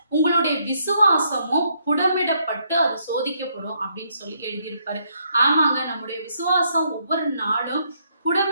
உங்களுடைய விசுவாசமும் புடமிடப்பட்டு அது சோதிக்கப்படும் அப்படின்னு சொல்லி எழுதியிருப்பாரு. ஆமாங்க, நம்முடைய விசுவாசம் ஒவ்வொரு நாளும்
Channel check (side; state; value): both; inverted; correlation -0.73